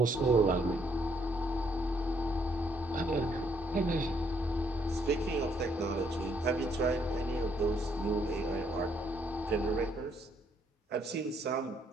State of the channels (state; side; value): normal; both; correlation 0.70